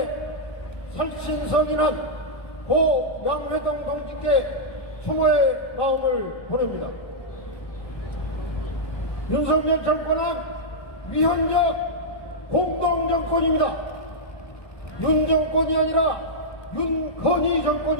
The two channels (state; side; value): late; right; 1.2 ms